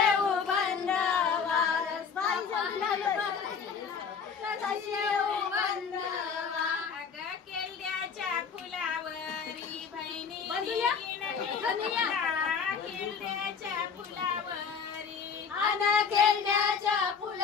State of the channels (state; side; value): quieter; right; 6.2 dB